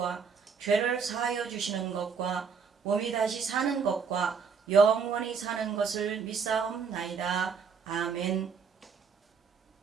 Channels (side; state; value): left; quieter; 5.9 dB